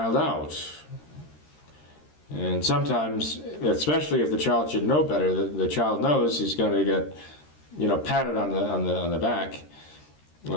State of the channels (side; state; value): right; late; 13 ms